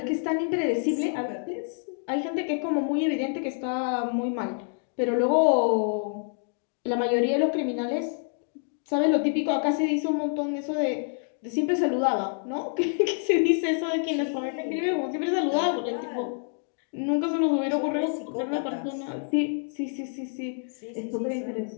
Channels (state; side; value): silent; right; 58 dB below the other